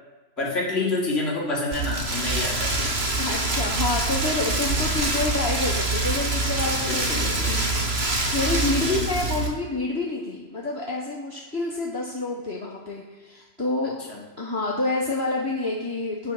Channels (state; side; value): late; left; 3.0 ms